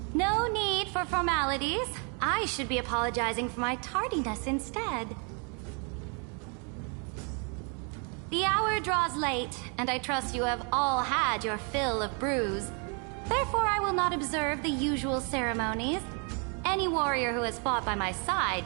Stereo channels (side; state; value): left; quieter; 37.2 dB